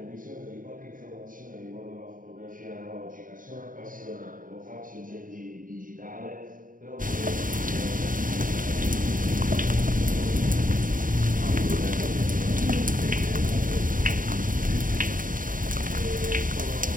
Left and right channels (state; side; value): late; left; 0.39 ms